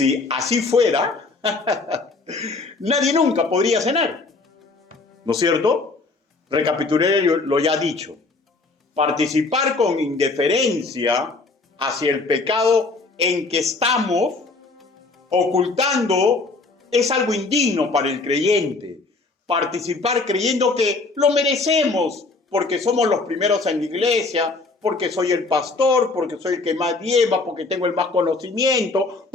así fuera, nadie nunca podría cenar, ¿no es cierto? Recapitulé lo ya dicho. Participar con indiferencia hacia el pecado en que estamos ocultando es algo indigno para el creyente. Participar creyendo que lo merecemos porque somos los primeros en la iglesia, porque soy el pastor, porque soy el que más lleva, porque tengo el más conocimiento,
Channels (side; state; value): right; quieter; 3.6 dB